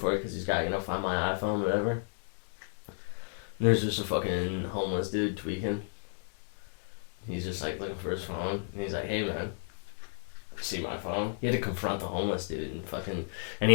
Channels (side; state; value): right; silent; 56 dB below the other